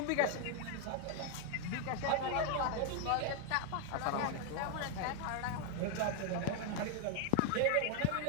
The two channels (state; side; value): different; both; correlation 0.01